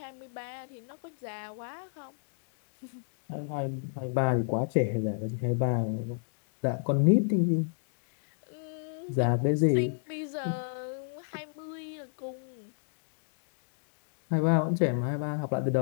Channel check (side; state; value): right; silent; digital silence